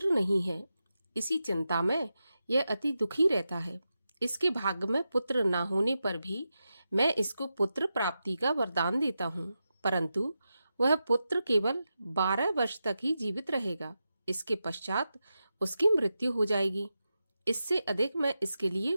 नहीं है। इसी चिंता में यह अति दुखी रहता है। इसके भाग्य में पुत्र ना होने पर भी मैं इसको पुत्र प्राप्ति का वरदान देता हूँ, परंतु वह पुत्र केवल 12 वर्ष तक ही जीवित रहेगा। इसके पश्चात उसकी मृत्यु हो जाएगी। इससे अधिक मैं इसके लिए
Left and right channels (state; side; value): inverted; both; correlation -0.90